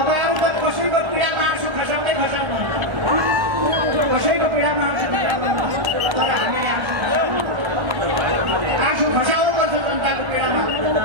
त कसैको पीडामा आँसु खसाउँदै खसाउनुहुन्छ कसैको पीडामा आँसु खसाउनुहुन्छ तर हामीले आँसु खसाउनुपर्छ जनताको पीडामा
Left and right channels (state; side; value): late; left; 1.3 ms